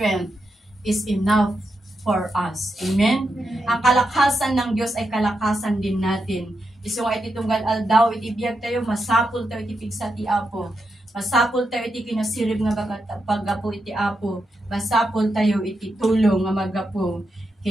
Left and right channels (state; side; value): normal; both; correlation 0.85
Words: is enough for us. Amen? Ang kalakasan ng Diyos ay kalakasan din natin. Iso nga iti tunggal aldaw, iti biyag tayo, masapul tayo iti pigsa ti Apo. Masapul tayo iti kinasirib nga paggapo iti Apo. Masapul tayo iti tulong nga magapo